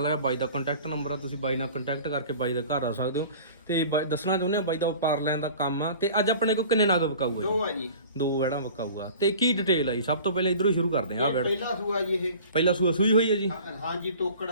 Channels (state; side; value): inverted; both; correlation -0.44